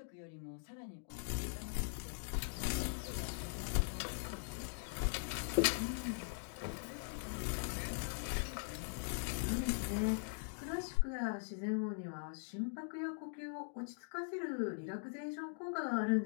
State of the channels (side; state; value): right; silent; digital silence